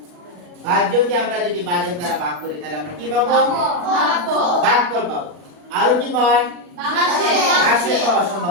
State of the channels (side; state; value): left; late; 40 ms